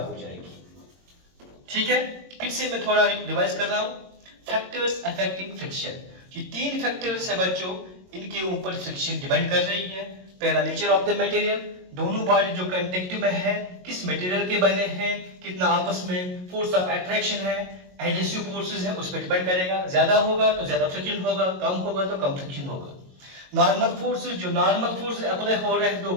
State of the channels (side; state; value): left; late; 22 ms